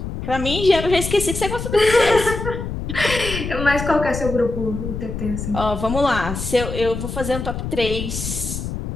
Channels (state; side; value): noise; left; rumble, 6 dB below the sound